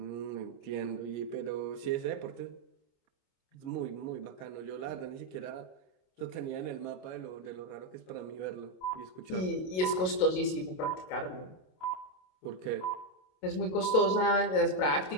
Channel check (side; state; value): right; late; 27 ms